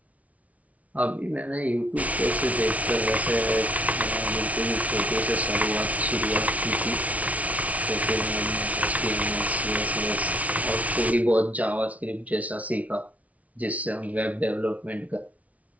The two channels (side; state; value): left; late; 0.068 ms